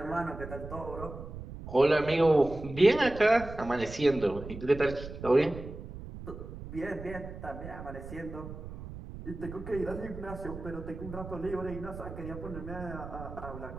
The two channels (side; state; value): right; noise; rumble, 11 dB below the sound